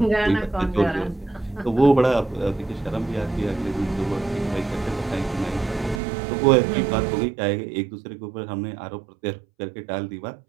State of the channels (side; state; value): left; drops out; at 6.0 s